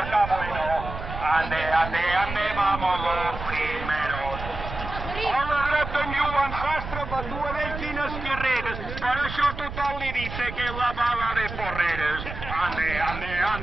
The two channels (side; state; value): right; noise; rumble, 8 dB below the sound